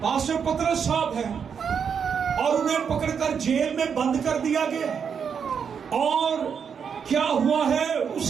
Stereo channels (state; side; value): quieter; left; 6.9 dB